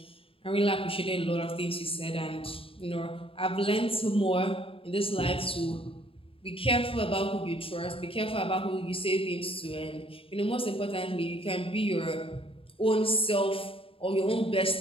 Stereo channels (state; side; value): late; right; 0.27 ms